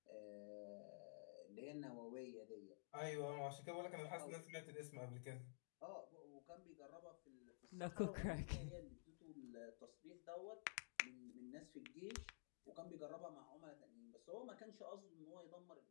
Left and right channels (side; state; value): right; silent; digital silence